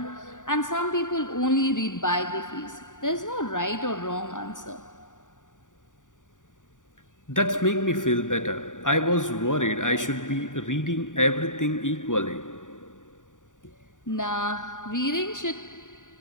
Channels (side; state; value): right; late; 0.87 ms